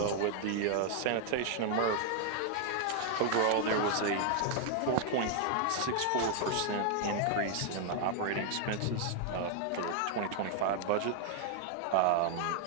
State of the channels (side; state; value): both; different; correlation 0.00